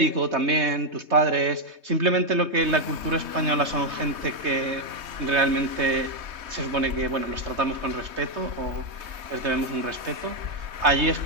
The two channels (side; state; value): left; late; 3.2 ms